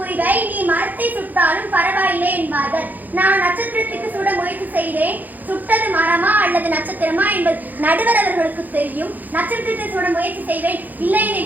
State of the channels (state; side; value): late; left; 0.083 ms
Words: நீ மரத்தை சுட்டாலும் பரவாயில்லை என்பார்கள். நான் நட்சத்திரத்துக்கு சுட முயற்சி செய்தேன். சுட்டது மரமா அல்லது நட்சத்திரமா என்பது நடுவர் அவர்களுக்கு தெரியும். நட்சத்திரத்தை சுட முயற்சி செய்வேன், இல்லை